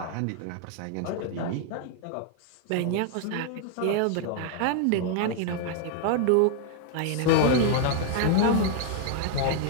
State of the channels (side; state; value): both; different; correlation 0.00